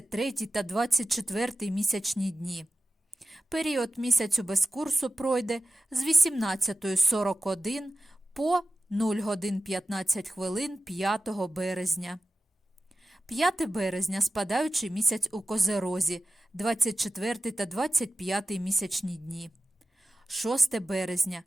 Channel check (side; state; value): both; normal; correlation 0.95